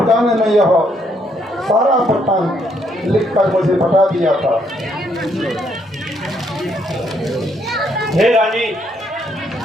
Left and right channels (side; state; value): both; normal; correlation 0.71